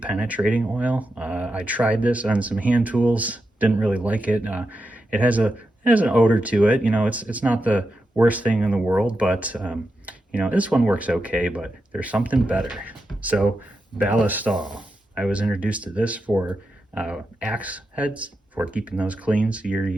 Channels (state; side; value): normal; both; correlation 0.88